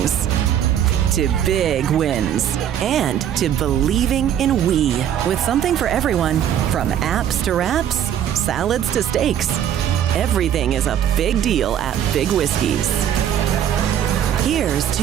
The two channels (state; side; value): quieter; left; 10.1 dB